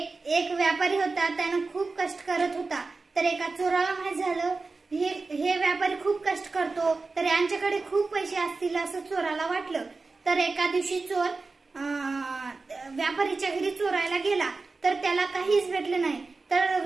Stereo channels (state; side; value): quieter; left; 3.9 dB